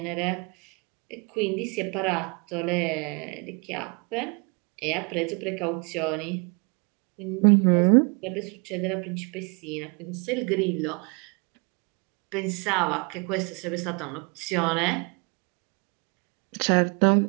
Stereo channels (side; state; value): left; quieter; 32.3 dB